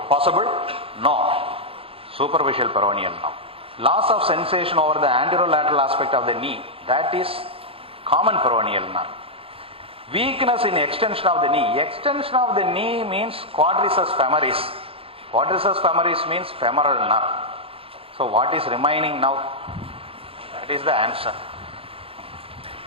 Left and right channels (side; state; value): left; late; 0.27 ms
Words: Possible? No. Superficial peroneal nerve. Loss of sensation over the anterolateral aspect of the knee. That is common peroneal nerve. Weakness in extension of the knee. Extension of the knee means quadriceps femoris. Quadriceps femoris means femoral nerve. So what is remaining now? That is the answer.